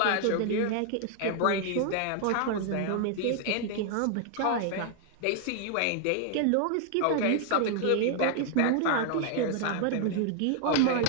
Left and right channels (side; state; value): both; different; correlation 0.00